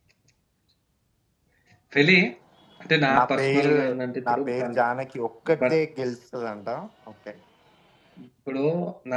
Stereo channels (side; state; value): both; identical; correlation 1.00